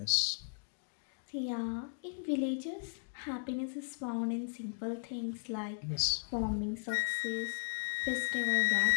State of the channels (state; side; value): silent; right; digital silence